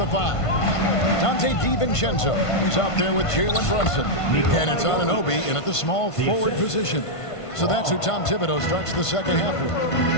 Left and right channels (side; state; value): right; late; 1.5 ms